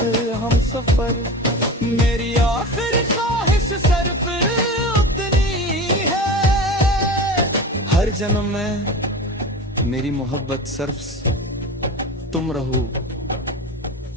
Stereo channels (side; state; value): both; normal; correlation 0.31